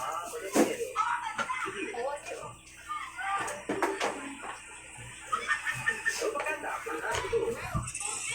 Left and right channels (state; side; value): identical; both; correlation 1.00